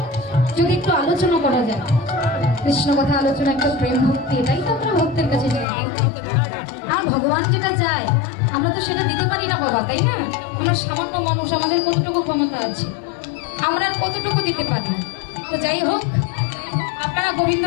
যদি একটু আলোচনা করা যায়, কৃষ্ণ কথা আলোচনা, একটা প্রেম ভক্তি, এটাই তো আমরা ভক্তের কাছে চাই। আর ভগবান যেটা চায় আমরা তো সেটা দিতে পারি না বাবা, তাই না? আমরা সামান্য মানুষ, আমাদের কতটুকু ক্ষমতা আছে, আমরা কতটুকু দিতে পারি। তো যাই হোক, আপনারা গোবিন্দ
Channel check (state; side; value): drops out; right; at 5.7 s